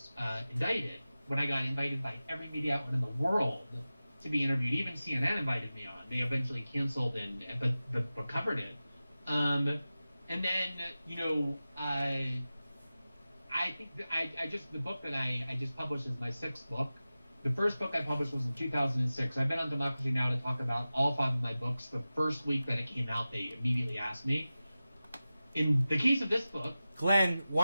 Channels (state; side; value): inverted; both; correlation -0.95